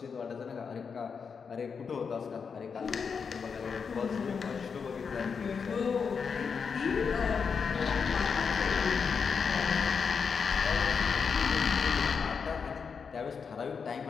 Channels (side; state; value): right; quieter; 5.9 dB